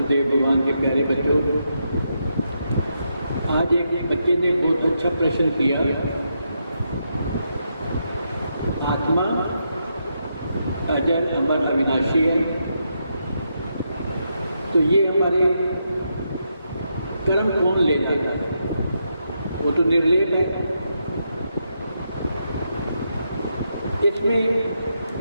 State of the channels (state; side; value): inverted; both; correlation -0.82